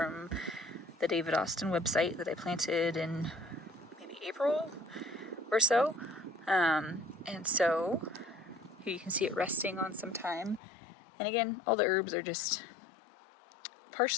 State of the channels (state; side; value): drops out; right; at 10.6 s